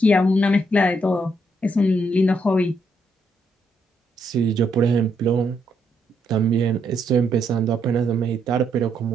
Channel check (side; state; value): both; normal; correlation 0.76